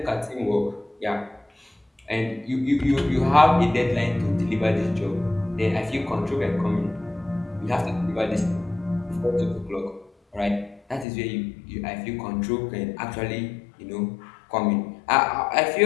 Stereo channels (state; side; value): drops out; right; at 11.1 s